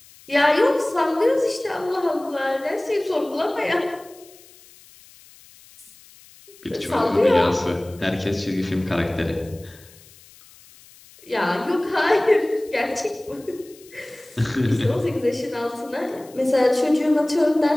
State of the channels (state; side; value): noise; left; hiss, 24 dB below the sound